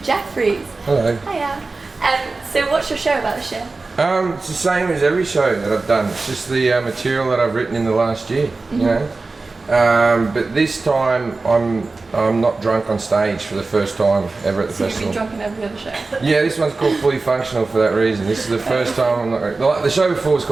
Hello. Hiya. So what's your show about this year? It's the same as every show that I've done. It's just the material that I've written in the last year, you know. But this time I'm not drunk on stage for the first time ever at the So festival. you've been drunk in every other show? Yeah, this one's called Fully Functional for that reason. This is the first time I'm not. The show before was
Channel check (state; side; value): quieter; left; 3.7 dB